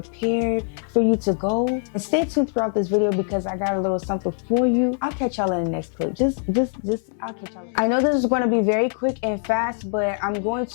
for you to go, and stay tuned throughout this video because I got a little something for you. I'll catch y'all in the next clip. I'll catch y'all. I know this is going to be very quick and fast, but I'm going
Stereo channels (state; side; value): silent; right; 63 dB below the other